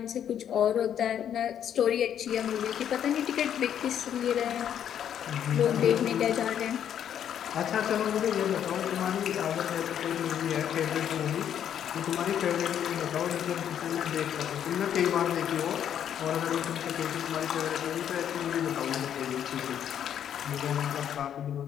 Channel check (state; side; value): quieter; right; 9.5 dB